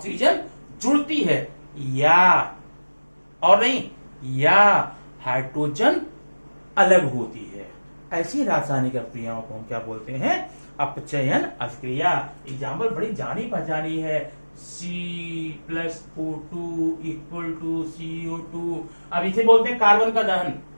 जुड़ती है, या और नहीं, या हाइड्रोजन अलग होती है। ऐसी रासायनिक अभिक्रियाओं को हम क्या बोलते हैं? अपचयन अभिक्रिया। एग्जाम्पल बड़ी जानी पहचानी है, C+O2 इक्वल टू CO2। अब इसे बोलते हैं कार्बन का दहन।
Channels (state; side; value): inverted; both; correlation -1.00